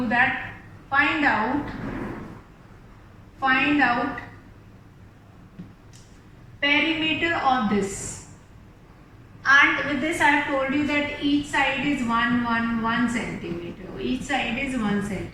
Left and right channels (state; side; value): identical; both; correlation 1.00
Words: find out perimeter of this, and with this I have told you that each side is 1 centimeter. Each side is 1